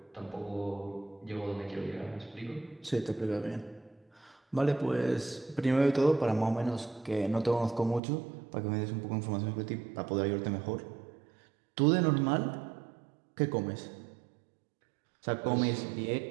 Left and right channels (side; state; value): left; drops out; at 8.0 s